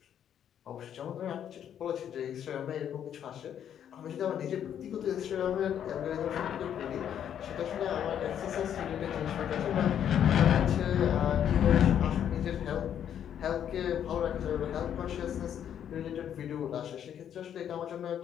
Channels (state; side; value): quieter; right; 9.5 dB